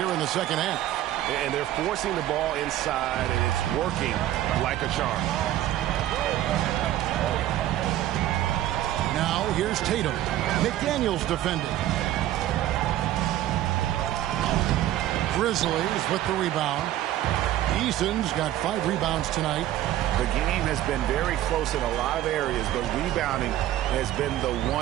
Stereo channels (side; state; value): left; quieter; 13.3 dB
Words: in the second half. And they're forcing the ball inside, and it's working like a charm. Now here's Tatum. McDaniel's defending. Grizzlies with the rebound. Eason's got 5 rebounds tonight. The game has been very close in a lot of areas, but rebounding has been the